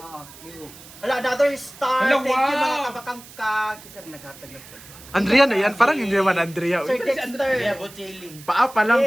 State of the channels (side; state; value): right; noise; hiss, 19 dB below the sound